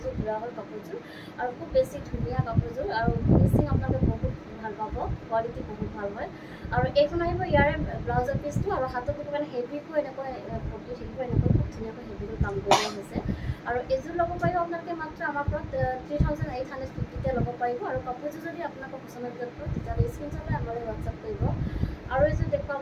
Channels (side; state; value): both; identical; correlation 1.00